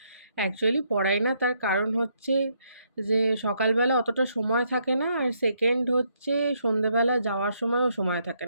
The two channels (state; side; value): inverted; both; correlation -0.74